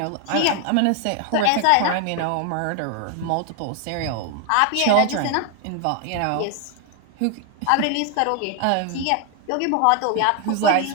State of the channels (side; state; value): both; different; correlation 0.01